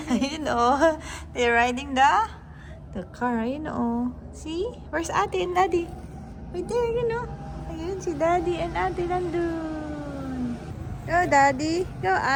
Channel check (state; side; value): identical; both; correlation 1.00